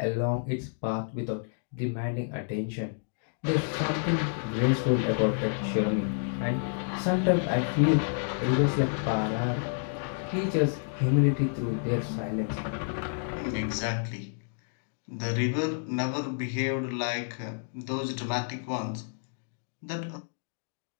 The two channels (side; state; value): right; silent; digital silence